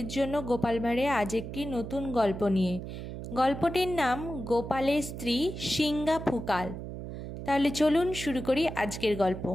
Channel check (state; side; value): noise; right; hum, 8 dB below the sound